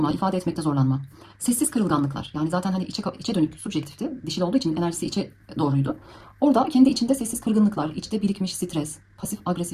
ifade etmekte zorlanma. Sessiz kırılganlıklar. Yani zaten hani içe dönük, subjektifti. Dişil olduğu için enerjisi içe doğruydu. Orada kendi içinde sessiz kırgınlıklar, içte birikmiş stres, pasif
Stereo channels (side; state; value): both; identical; correlation 1.00